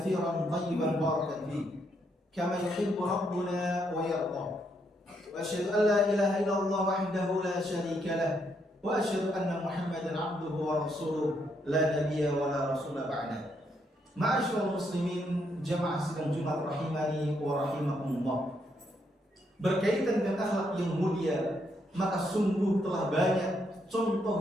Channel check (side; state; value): both; normal; correlation 0.76